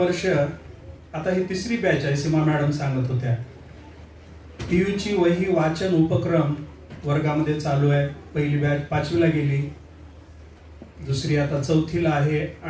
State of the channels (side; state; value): both; identical; correlation 1.00